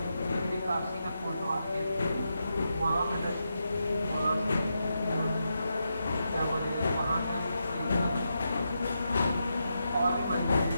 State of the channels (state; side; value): inverted; both; correlation -0.85